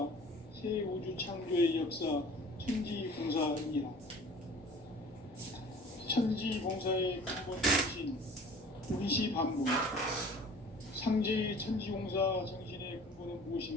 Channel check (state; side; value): normal; both; correlation 0.46